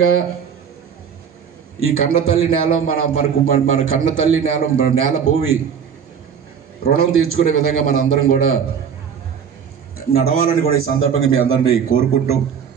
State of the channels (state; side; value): quieter; left; 7.4 dB